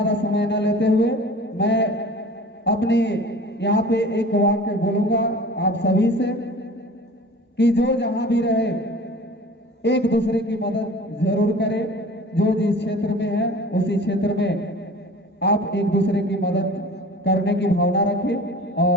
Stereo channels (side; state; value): both; normal; correlation 0.42